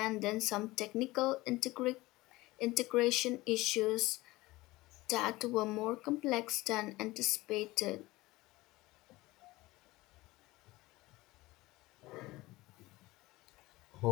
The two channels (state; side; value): quieter; right; 19.7 dB